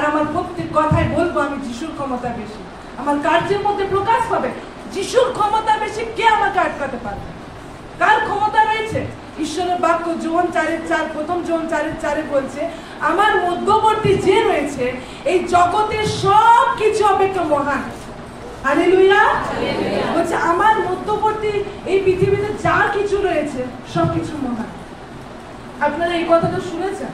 আমার প্রত্যেক কথায় বলবো আমি যিশুর ক্ষমতা বেশি, আমার কার্যের মধ্যে প্রকাশ পাবে যিশুর ক্ষমতা বেশি। কে আমাকে আটকাতে পারবে? কার ক্ষমতা রয়েছে? ঈশ্বরের বাক্য যোহন 4:4, প্রথম যোহন 4:4 বলছে, আমার মধ্যবর্তী যে রয়েছে এই জগতের সব কিছু অপেক্ষা মহান। হালেলুয়া। বলছে আমার মধ্যবর্তী এই পৃথিবীতে যা কিছু রয়েছে সবকিছু মহান। আপনারা এই কথাটা শুনেছেন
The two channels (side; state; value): both; identical; correlation 1.00